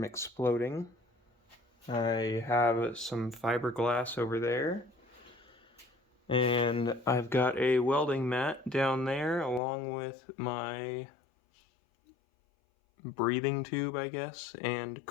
exploding. I have some fiberglass over there, and I've got a welding mat down there along with my breathing tube, I guess, and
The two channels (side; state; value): right; drops out; at 9.6 s